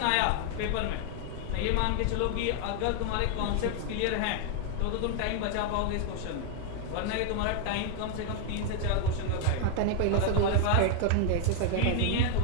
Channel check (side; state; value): both; different; correlation 0.00